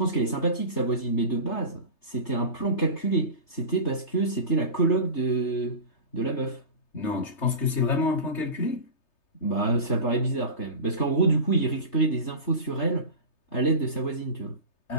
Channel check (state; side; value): late; right; 3.3 ms